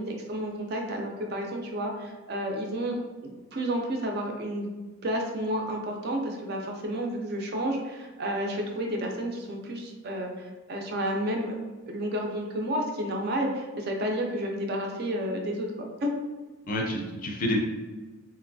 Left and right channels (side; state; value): both; normal; correlation 0.26